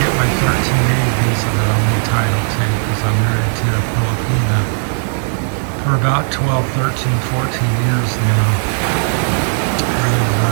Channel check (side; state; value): left; silent; digital silence